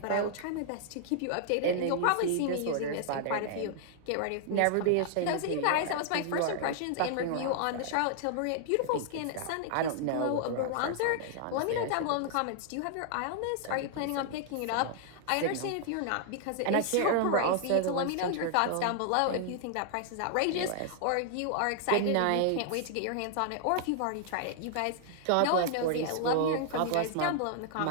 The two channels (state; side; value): different; both; correlation -0.01